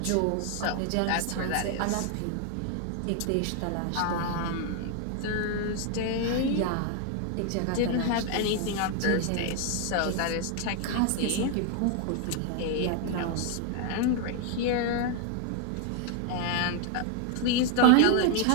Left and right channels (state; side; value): different; both; correlation 0.00